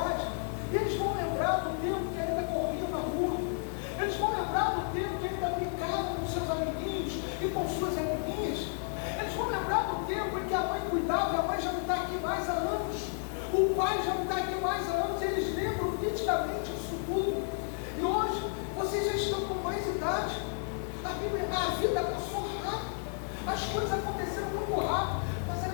e eles vão lembrar do tempo que ainda corriam na rua. Eles vão lembrar do tempo que ainda brincavam com seus amiguinhos e com suas amiguinhas. Eles vão lembrar do tempo em que a mãe cuidava, e a mãe já não está aqui mais há anos. O pai já não está aqui mais há anos. Eles lembram nitidamente isso tudo. E hoje, vocês já estão com mais idade. A vida passou rápido. As coisas aconteceram muito rápido. Mas a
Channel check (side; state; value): right; silent; 56 dB below the other